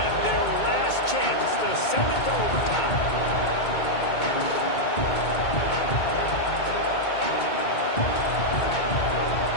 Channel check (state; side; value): late; right; 2.2 ms